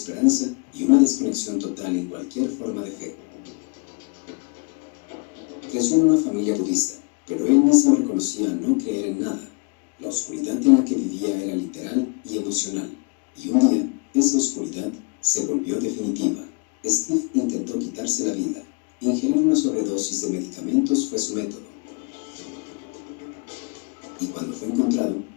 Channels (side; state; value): right; quieter; 33.1 dB